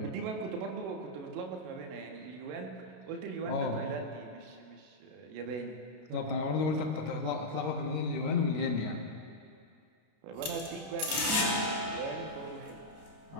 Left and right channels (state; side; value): late; left; 32 ms